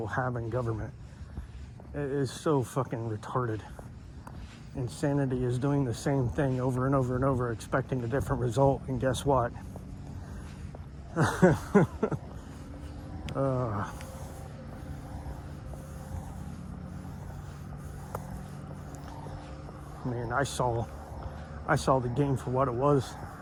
have in government is so fucking retarded. Insanity is doing the same thing over and over and over, expecting a different result, and guess what? Man, I saw the game for what it was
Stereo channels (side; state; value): both; identical; correlation 1.00